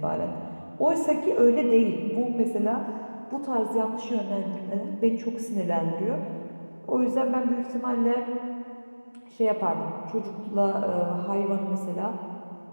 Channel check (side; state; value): both; inverted; correlation -1.00